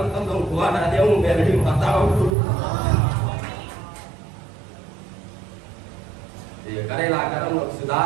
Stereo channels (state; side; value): drops out; left; at 2.4 s